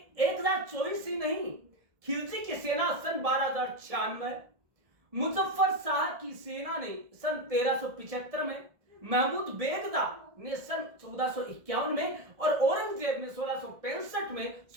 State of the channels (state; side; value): late; left; 1.7 ms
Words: 1024 ही नहीं, खिलजी की सेना सन 1296, मुजफ्फर शाह की सेना ने सन 1375 में, महमूद बेगदा ने सन 1451 में और औरंगजेब ने 1665 में